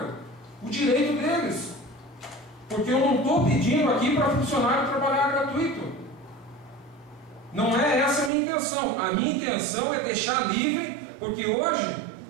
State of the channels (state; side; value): drops out; left; at 8.3 s